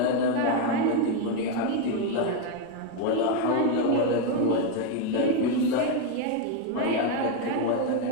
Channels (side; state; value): both; different; correlation 0.02